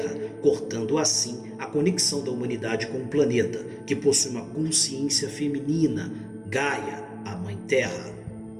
cortando assim a conexão da humanidade com o planeta, que possui uma consciência feminina, Gaia, a Mãe Terra.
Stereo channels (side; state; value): both; identical; correlation 1.00